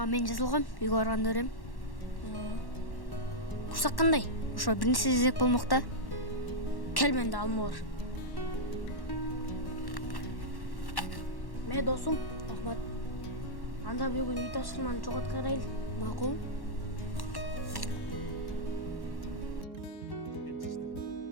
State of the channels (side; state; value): right; late; 1.1 ms